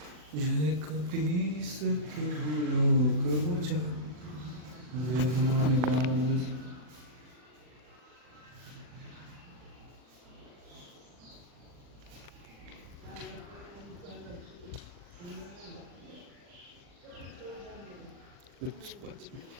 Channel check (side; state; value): left; late; 40 ms